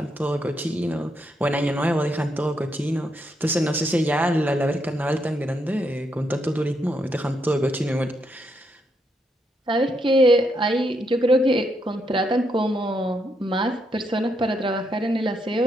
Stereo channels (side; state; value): both; normal; correlation 0.78